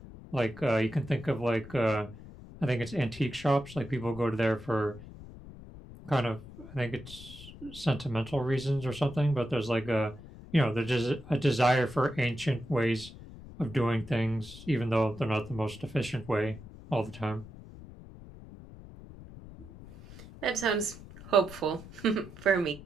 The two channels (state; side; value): noise; left; rumble, 16 dB below the sound